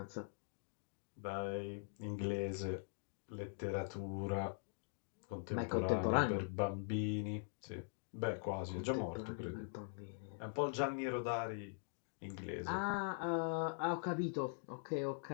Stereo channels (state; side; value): silent; right; digital silence